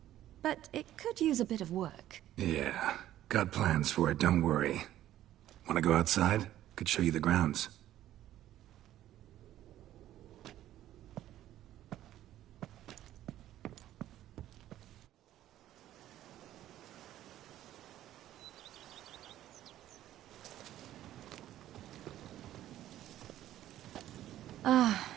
but it could use a bit of work. Yeah, got plans for it, don't worry. Wanna go outside? Could show you the grounds. Ah,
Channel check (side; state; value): left; quieter; 13.0 dB